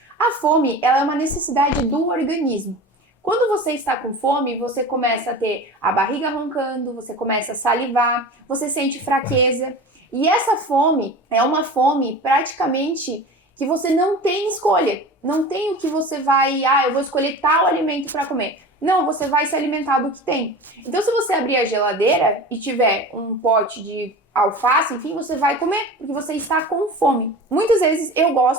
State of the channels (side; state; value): both; normal; correlation 0.34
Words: A fome, ela é uma necessidade do organismo. Quando você está com fome, você começa a ter a barriga roncando, você começa a salivar, você sente fraqueza. E essa fome é uma fome praticamente que você não tem escolha. Não tem o que você vai, eu vou escolher tal alimento para comer. Não, você vai se alimentar do que tem. Então, se você abrir a geladeira e tiver um pote de alface, enfim, você vai comer, porque você está com fome. Muitas vezes, eu